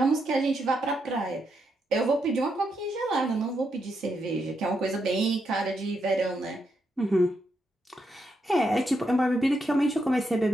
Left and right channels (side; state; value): both; normal; correlation 0.81